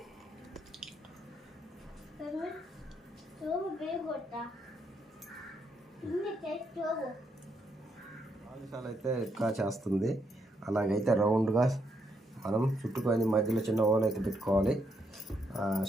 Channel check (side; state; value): both; normal; correlation 0.77